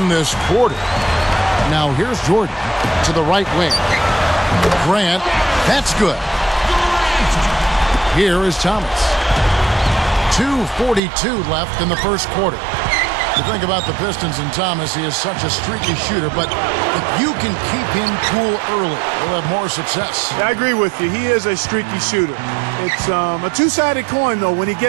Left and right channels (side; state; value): left; drops out; at 11.0 s